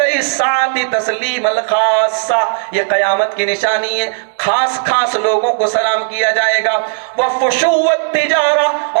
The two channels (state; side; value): silent; left; digital silence